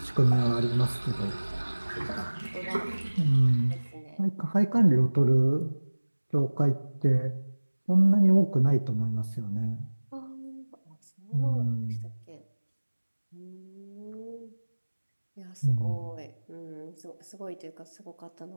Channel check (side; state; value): both; inverted; correlation -1.00